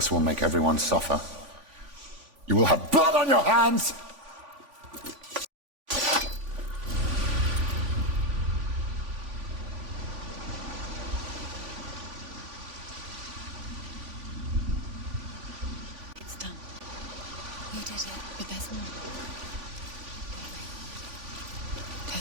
will make everyone suffer. You will have blood on your hands! It's done. You did it, but there's more.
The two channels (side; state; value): left; late; 3.5 ms